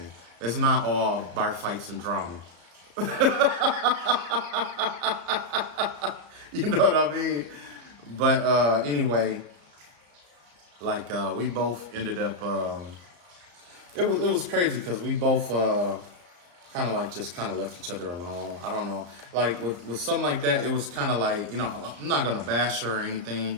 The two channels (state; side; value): late; left; 34 ms